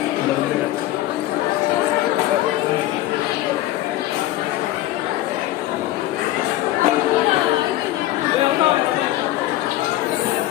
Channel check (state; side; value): quieter; right; 15.2 dB